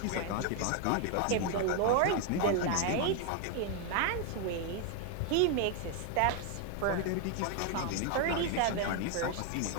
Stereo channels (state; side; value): different; both; correlation 0.01